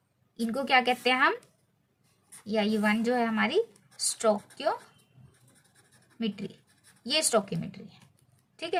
इनको क्या कहते हैं हम, या ये 1 जो है हमारी स्टोइकियोमेट्री, ये स्टोइकियोमेट्री है, ठीक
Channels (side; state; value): both; identical; correlation 1.00